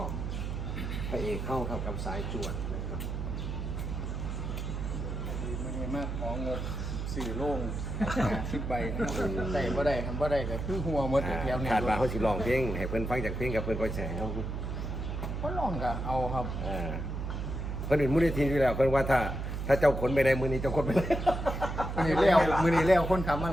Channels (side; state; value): right; noise; hum, 4 dB below the sound